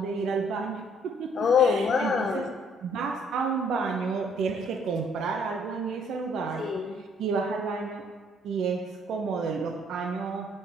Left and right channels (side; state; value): both; normal; correlation 0.63